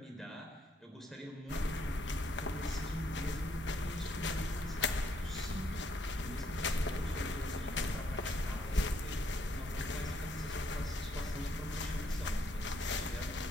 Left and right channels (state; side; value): normal; both; correlation 0.71